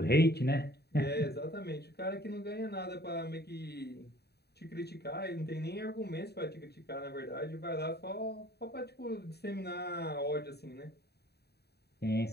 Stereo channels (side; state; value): right; late; 0.47 ms